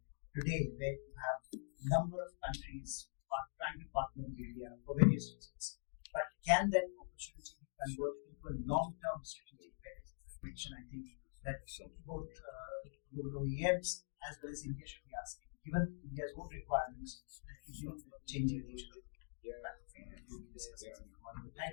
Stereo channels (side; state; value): right; silent; digital silence